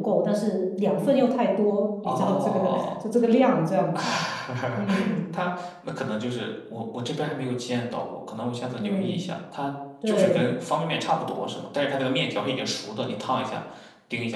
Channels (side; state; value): both; identical; correlation 1.00